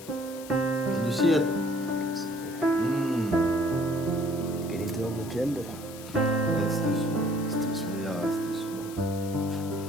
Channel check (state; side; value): noise; left; hiss, 16 dB below the sound